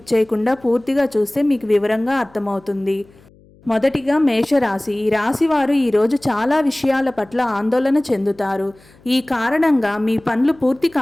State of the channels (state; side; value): noise; left; hum, 28 dB below the sound